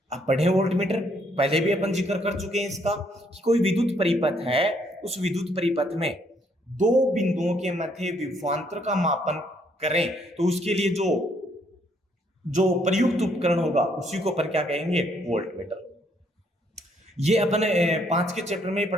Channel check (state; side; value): normal; both; correlation 0.69